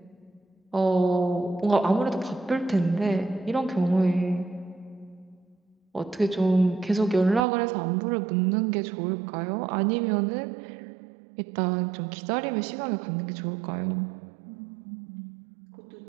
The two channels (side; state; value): left; drops out; at 7.4 s